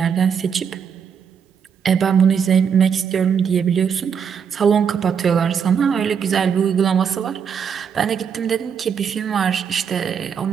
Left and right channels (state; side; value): quieter; left; 7.2 dB